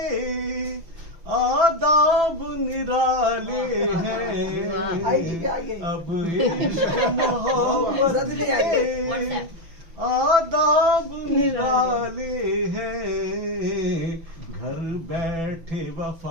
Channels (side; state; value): left; late; 6.0 ms